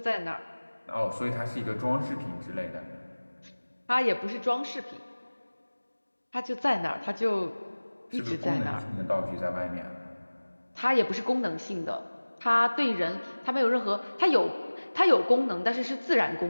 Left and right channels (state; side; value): inverted; both; correlation -1.00